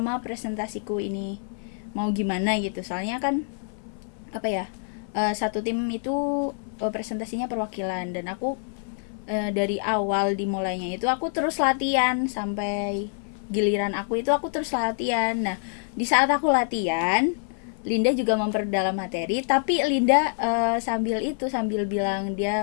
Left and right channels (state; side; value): silent; right; 59 dB below the other